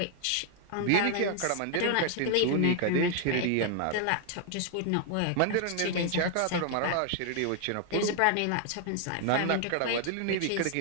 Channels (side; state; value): both; different; correlation 0.00